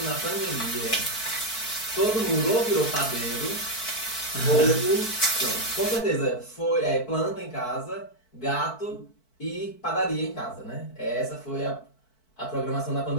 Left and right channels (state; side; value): late; right; 4.6 ms